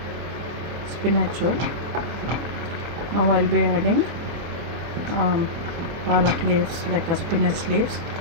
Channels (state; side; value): late; left; 24 ms